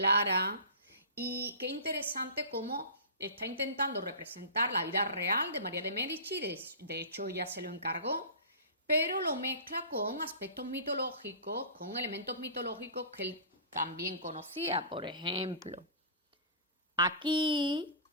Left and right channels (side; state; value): both; inverted; correlation -0.35